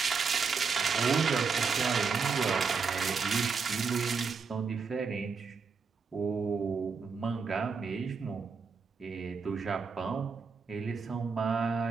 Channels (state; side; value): quieter; left; 5.3 dB